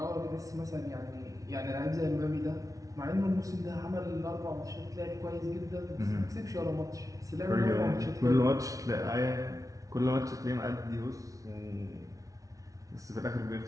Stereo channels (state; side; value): late; left; 0.17 ms